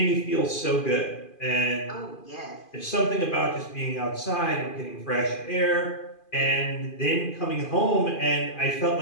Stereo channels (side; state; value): right; late; 2.5 ms